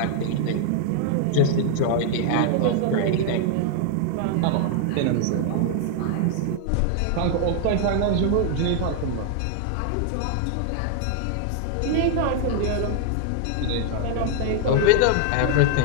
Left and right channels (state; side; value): different; both; correlation 0.00